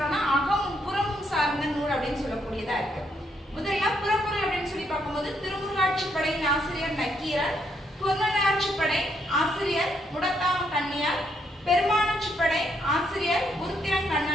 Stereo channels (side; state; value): both; normal; correlation 0.75